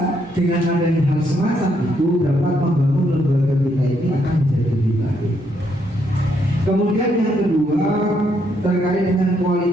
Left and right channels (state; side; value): normal; both; correlation 0.74